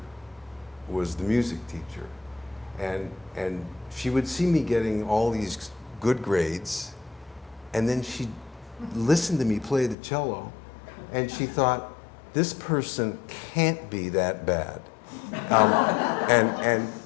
was the music teacher. And she would see me getting all these good grades, and then she'd listen to me play the cello, and she thought, this person can't be that bad.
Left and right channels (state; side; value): drops out; right; at 10.0 s